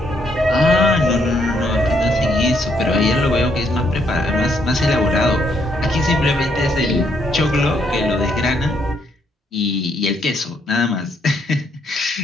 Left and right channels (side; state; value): both; normal; correlation 0.73